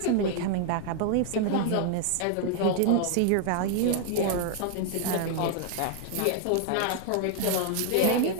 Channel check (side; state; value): both; different; correlation 0.00